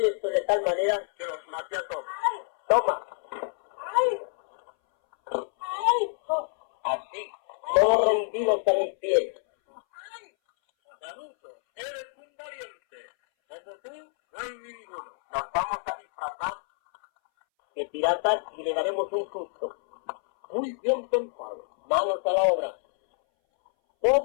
esto de tal manera Que los maté a todos. toma, así, todos rendidos a mis pies. Canuto, eres un valiente. Como tú, no hay ninguno. Nos vamos a disfrazar de piratas y le daremos un susto. Muy bien pensado. Manos a la obra.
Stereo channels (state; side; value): silent; right; 60 dB below the other